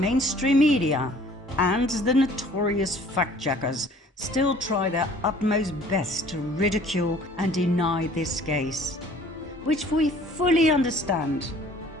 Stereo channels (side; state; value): both; normal; correlation 0.53